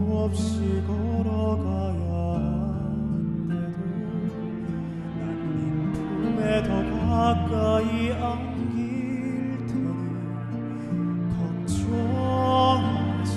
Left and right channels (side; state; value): both; identical; correlation 1.00